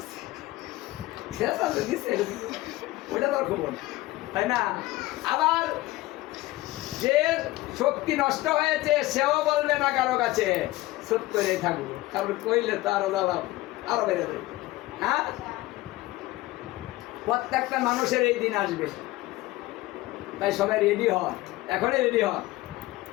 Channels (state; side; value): quieter; right; 18.5 dB